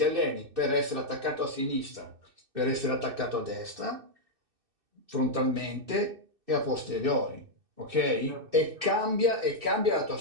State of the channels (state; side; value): late; left; 2.6 ms